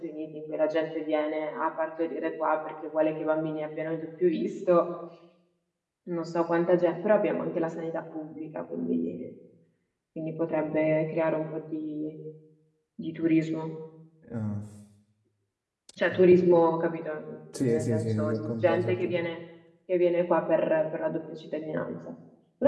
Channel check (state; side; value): identical; both; correlation 1.00